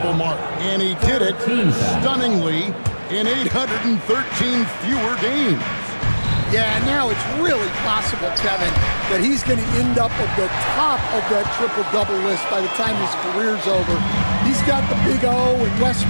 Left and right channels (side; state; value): both; inverted; correlation -1.00